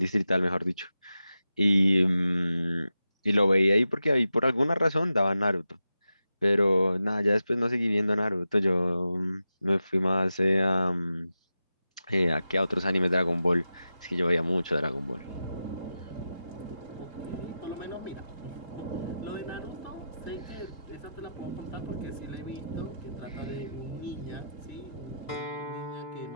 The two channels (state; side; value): inverted; both; correlation -0.90